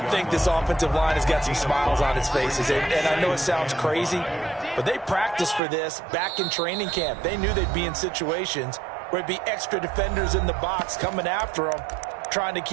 think this offensive line has got some smiles on its faces. And I know it sounds crazy, but they practiced for this back in training camp. They knew they'd be in situations where it'd be extra defenders in the box coming after them, trying to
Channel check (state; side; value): drops out; left; at 5.6 s